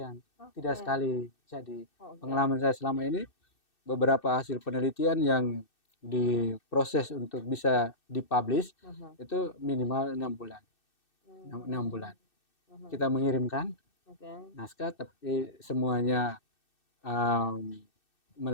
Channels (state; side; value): late; right; 2.6 ms